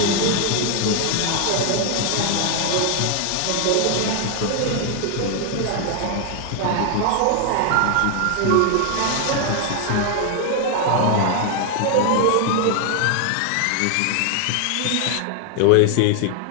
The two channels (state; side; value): different; both; correlation 0.00